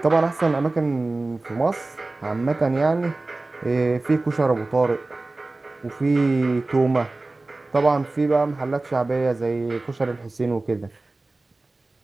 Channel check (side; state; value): left; quieter; 3.1 dB